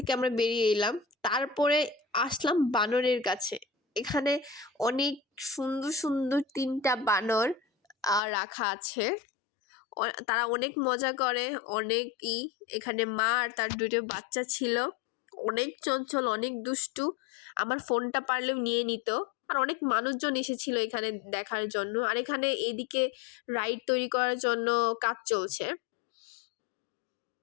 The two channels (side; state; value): right; drops out; at 8.2 s